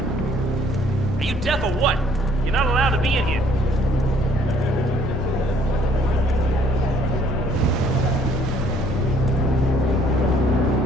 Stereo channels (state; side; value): noise; left; rumble, 14 dB below the sound